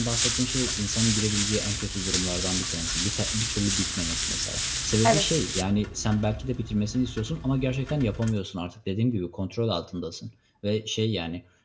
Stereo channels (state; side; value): identical; both; correlation 1.00